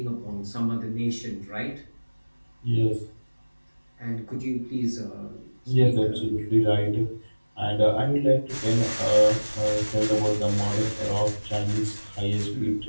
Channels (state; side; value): inverted; both; correlation -1.00